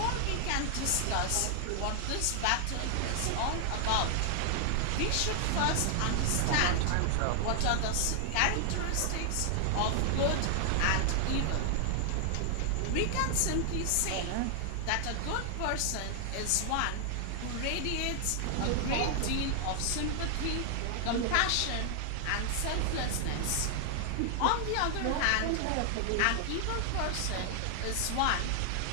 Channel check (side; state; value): both; different; correlation 0.00